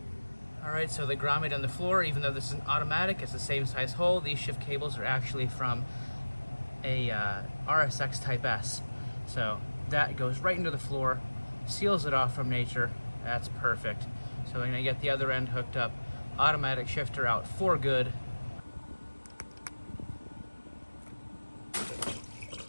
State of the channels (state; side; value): inverted; both; correlation -1.00